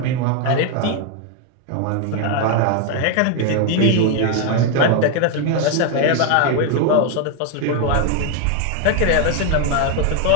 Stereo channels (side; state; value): both; different; correlation 0.01